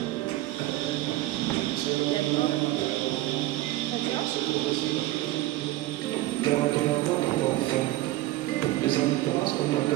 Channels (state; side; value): quieter; left; 16.8 dB